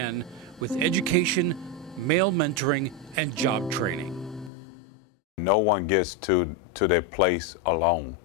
with education, male mentoring, and job training. No one gets to their place alone.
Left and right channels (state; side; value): drops out; right; at 4.5 s